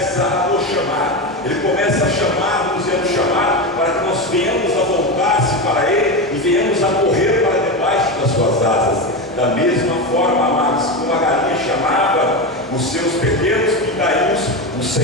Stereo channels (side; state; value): both; normal; correlation 0.18